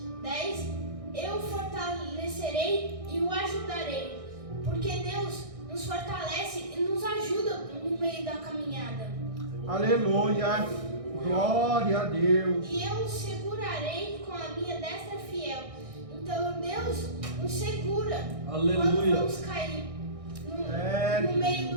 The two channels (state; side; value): late; left; 1.6 ms